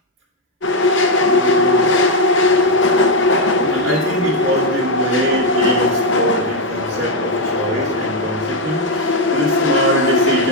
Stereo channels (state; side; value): normal; both; correlation 0.03